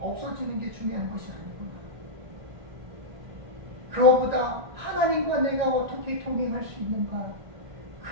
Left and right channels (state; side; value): late; left; 1.9 ms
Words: 없어지는 게 중요한 것이 아니구나. 그것보다 하나님과 내가 어떻게 동행할 수 있는가,